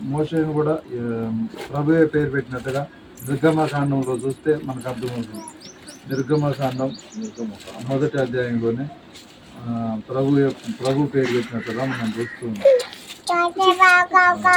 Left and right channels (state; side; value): identical; both; correlation 1.00